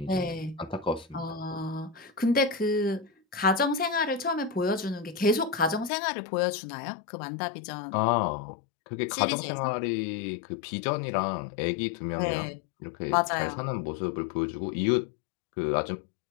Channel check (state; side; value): drops out; right; at 5.9 s